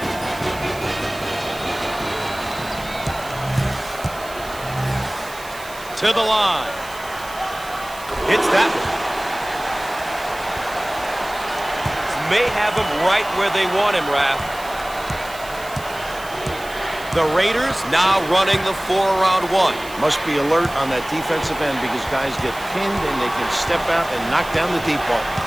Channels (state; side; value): noise; right; hiss, 17 dB below the sound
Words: To the line. Hits that one. May have him right where they want him, Raph. The Raiders now running the 4-around-1. Must be alert on that defensive end because guys get pinned and they can step out and knock down the deep ball.